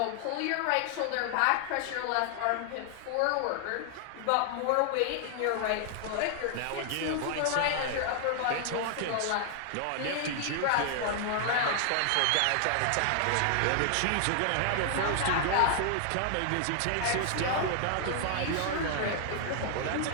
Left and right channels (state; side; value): different; both; correlation 0.00